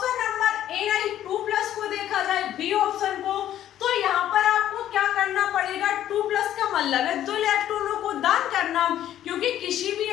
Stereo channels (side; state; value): right; quieter; 11.8 dB